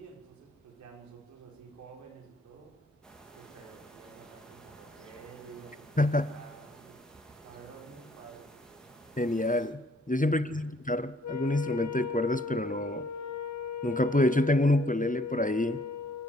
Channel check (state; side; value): normal; both; correlation 0.62